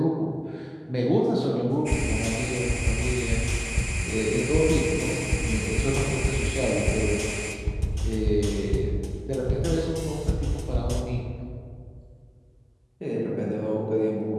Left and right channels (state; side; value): identical; both; correlation 1.00